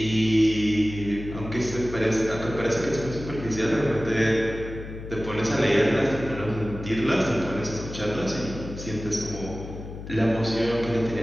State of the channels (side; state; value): left; noise; hum, 11 dB below the sound